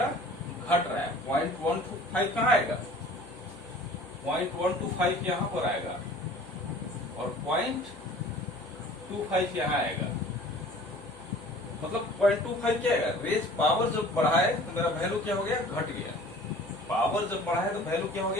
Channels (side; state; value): left; noise; hum, 19 dB below the sound